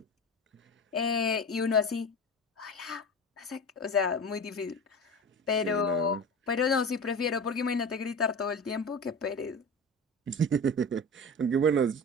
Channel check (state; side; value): normal; both; correlation 0.30